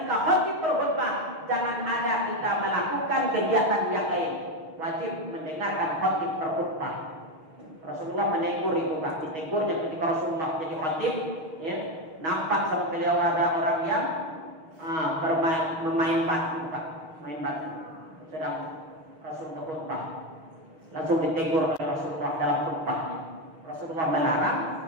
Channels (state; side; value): late; left; 6.4 ms